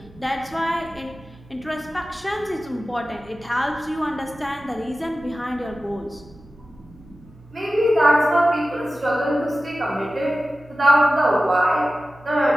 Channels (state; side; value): noise; right; hum, 24 dB below the sound